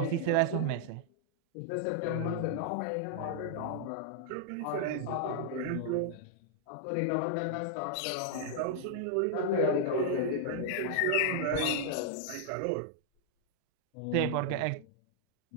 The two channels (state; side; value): different; both; correlation -0.01